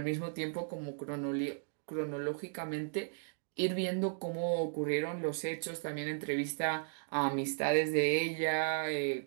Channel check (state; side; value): silent; left; digital silence